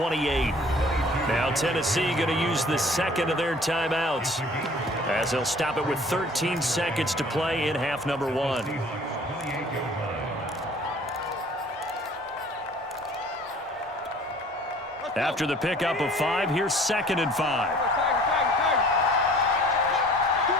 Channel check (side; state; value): both; normal; correlation 0.51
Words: Now Tennessee going to use the 2nd of their timeouts as they'll stop it with 13 seconds to play in half number 1. After the pickup of 5, here's 2nd and 5.